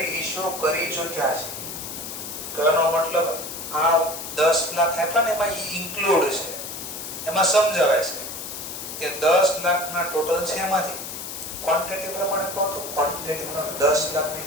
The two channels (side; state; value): left; noise; hiss, 8 dB below the sound